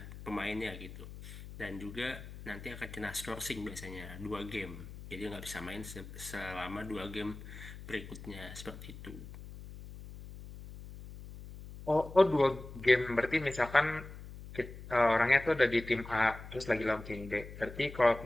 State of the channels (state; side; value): noise; left; hum, 13 dB below the sound